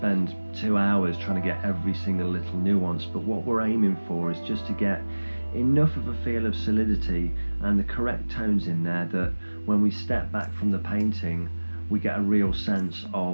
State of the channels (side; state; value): both; inverted; correlation -1.00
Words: 2 hours trying to get every single little nuance, but what we're aiming for is just to get enough of a feel of solidity and the correct tones in there that when we step back from the painting we get a real sense